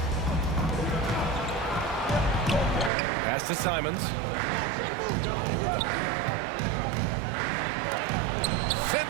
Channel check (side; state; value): left; drops out; at 2.9 s